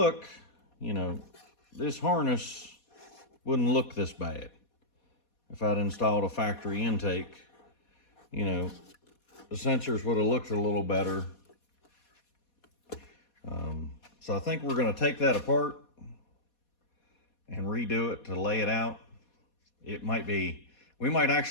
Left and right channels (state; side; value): late; right; 4.2 ms